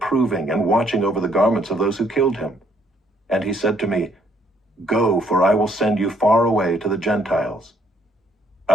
and watching over the garments of those who killed him. And he said to me, Go, for I will send you far away to the Gentiles.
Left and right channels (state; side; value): normal; both; correlation 0.67